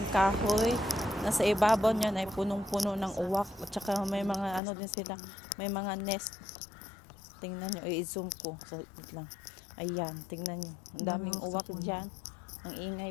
kahoy. Nasa ibabaw niya ay punong-puno ng uwak. At saka may mga ano din sila, may mga nest. Tingnan nyo, i-zoom ko. So, wait lang. Ayan, tingnan nyo. Ang daming uwak dyan. Ang ingay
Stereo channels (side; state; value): right; drops out; at 4.6 s